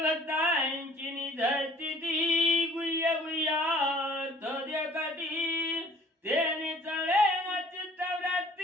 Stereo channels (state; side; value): normal; both; correlation 0.54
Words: भक्तांची निधरती ती, गुह्य गुह्यार्थ देखती, तेने चळे न